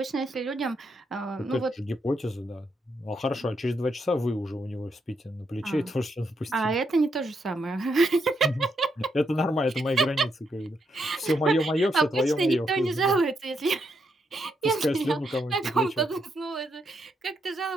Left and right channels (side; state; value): both; normal; correlation 0.79